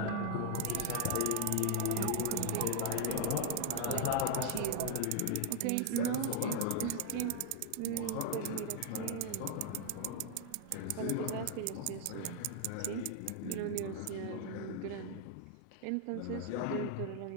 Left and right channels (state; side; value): different; both; correlation 0.00